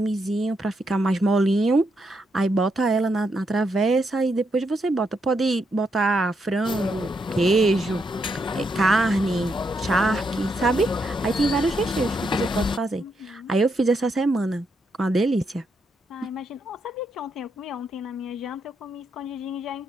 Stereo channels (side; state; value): both; normal; correlation 0.79